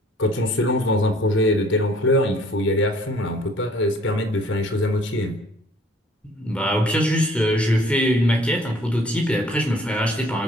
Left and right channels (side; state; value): both; normal; correlation 0.56